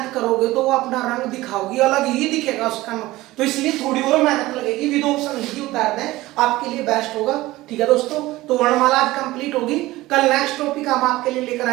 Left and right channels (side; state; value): left; quieter; 18.1 dB